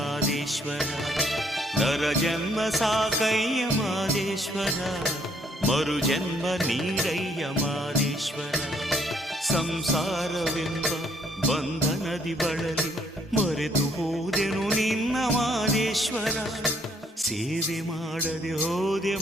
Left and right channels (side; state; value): both; normal; correlation 0.67